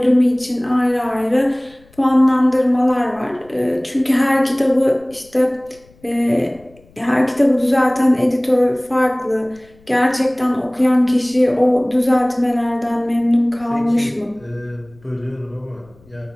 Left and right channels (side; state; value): left; noise; rumble, 29 dB below the sound